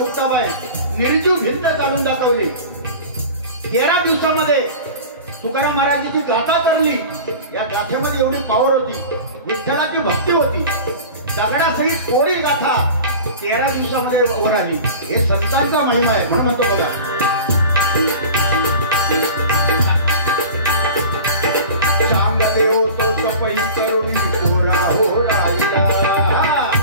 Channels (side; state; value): both; inverted; correlation -0.37